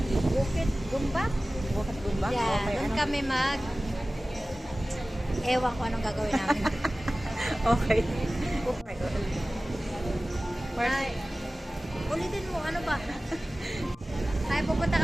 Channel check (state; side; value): normal; both; correlation 0.97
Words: Bukit Gumbak. Bukit Gumbak? Yeah, Okay, doon ano? kami ewan ko anong gagawin namin. Okay. Okay. Ay, ulitin mo, ano ba? Ay, pupunta